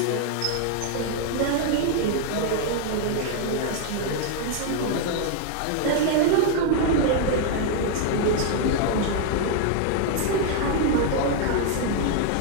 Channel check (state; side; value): different; both; correlation 0.00